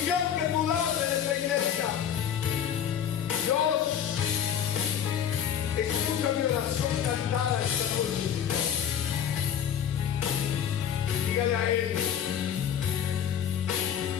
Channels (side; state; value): right; quieter; 8.9 dB